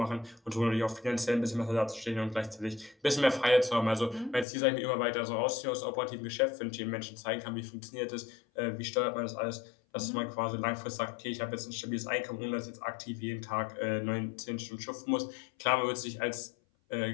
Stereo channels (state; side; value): drops out; right; at 4.5 s